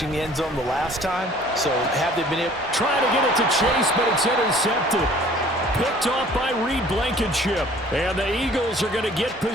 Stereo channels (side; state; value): both; normal; correlation 0.52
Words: the end zone the last time. So have they been able... Trying to get it to Chase, but it's intercepted. Picked off by Reed Blankenship. And the Eagles are going to get